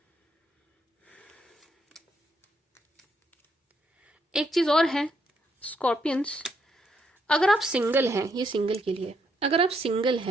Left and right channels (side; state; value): both; normal; correlation 0.75